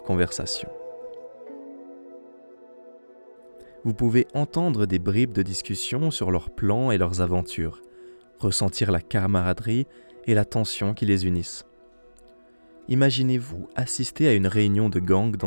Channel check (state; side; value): inverted; both; correlation -1.00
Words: conversation. Vous pouvez entendre des bribes de discussion sur leurs plans et leurs aventures, ressentir la camaraderie et la tension qui les unissent. Imaginez-vous assister à une réunion de gang